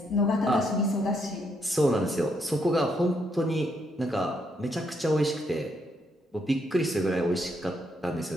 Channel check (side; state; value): both; normal; correlation 0.75